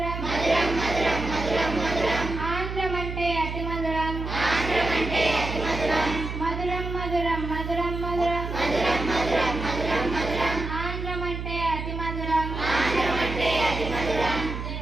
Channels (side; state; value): right; noise; hum, 6 dB below the sound